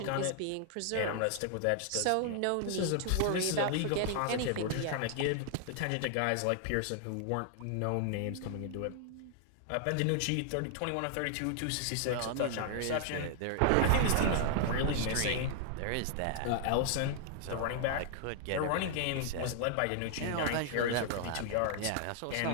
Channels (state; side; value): different; both; correlation 0.00